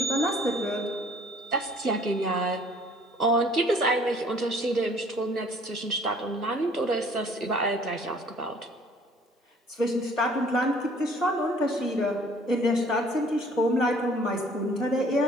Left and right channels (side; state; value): both; normal; correlation 0.56